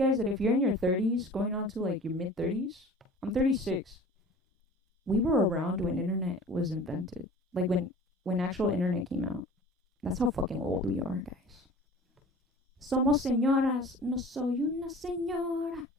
That if you're in your 30s, going on to like your mid 30s, I'm 36. We were around when internet was invented. Like when actual internet came out. That's how fucking old we are, guys. Somos señoras, no soy una señora.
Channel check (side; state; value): both; normal; correlation 0.43